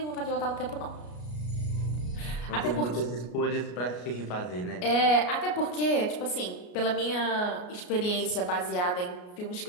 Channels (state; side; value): late; right; 33 ms